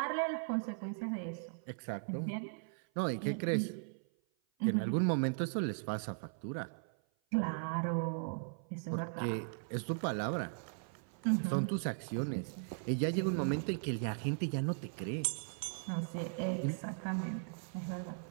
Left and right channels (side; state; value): left; silent; 52 dB below the other